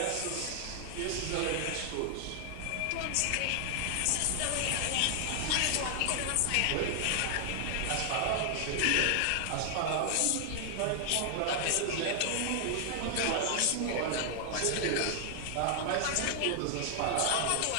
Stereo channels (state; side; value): different; both; correlation 0.00